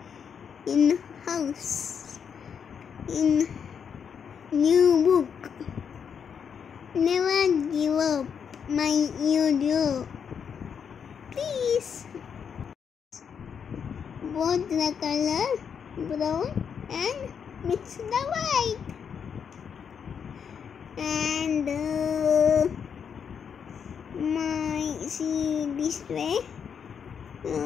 in house, in new book. Never give up my video. Please. Both the color brown and mix the white. And see this way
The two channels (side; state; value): right; quieter; 7.2 dB